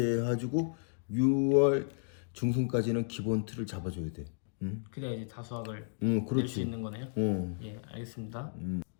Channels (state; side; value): silent; right; digital silence